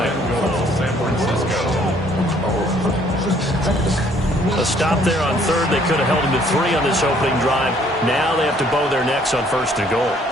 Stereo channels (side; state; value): both; normal; correlation 0.62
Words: San Francisco. A stop there on 3rd. They could have held him to 3 on this opening drive. Now they have to bow their necks on 1st and goal.